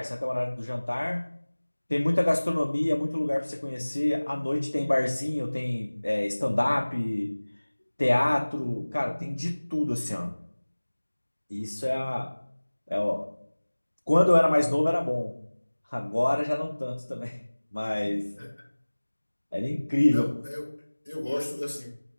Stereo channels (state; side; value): inverted; both; correlation -1.00